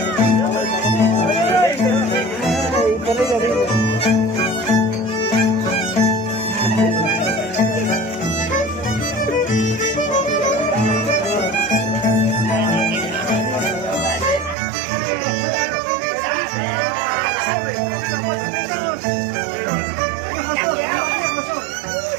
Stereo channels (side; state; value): left; drops out; at 14.6 s